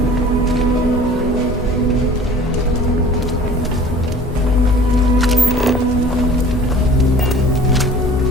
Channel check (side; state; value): both; normal; correlation 0.46